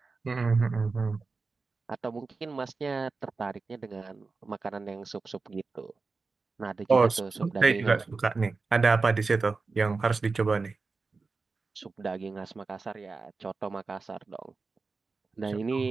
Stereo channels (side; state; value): left; quieter; 4.2 dB